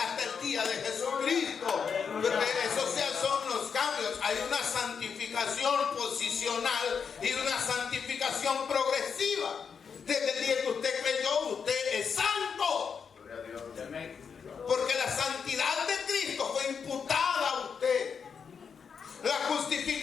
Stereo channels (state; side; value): quieter; right; 6.4 dB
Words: el día de Jesucristo. Porque esos son los cambios. Hay una santificación posicional y una santificación progresiva. Desde el día que usted creyó, usted es santo. Porque la santidad de Cristo fue imputada a usted. La